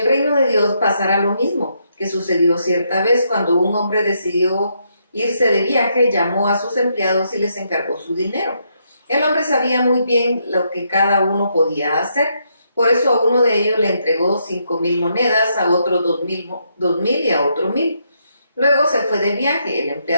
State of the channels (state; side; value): inverted; both; correlation -0.77